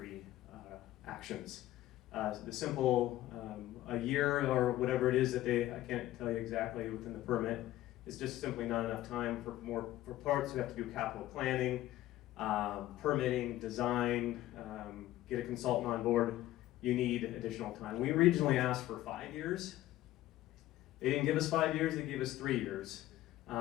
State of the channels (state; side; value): quieter; right; 15.1 dB